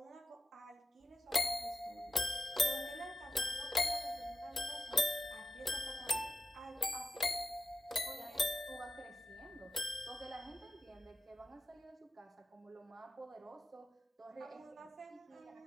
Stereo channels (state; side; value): normal; both; correlation 0.86